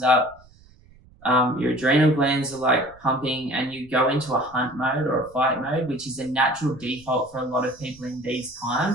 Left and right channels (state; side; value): noise; right; rumble, 26 dB below the sound